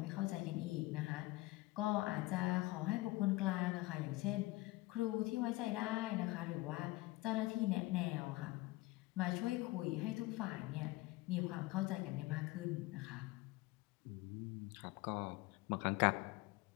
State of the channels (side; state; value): right; quieter; 20.1 dB